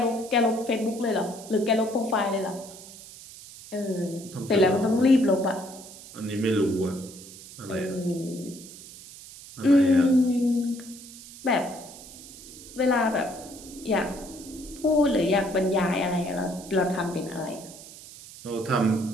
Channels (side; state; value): right; noise; hiss, 17 dB below the sound